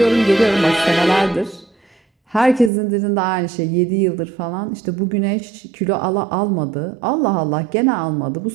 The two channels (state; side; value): drops out; left; at 2.7 s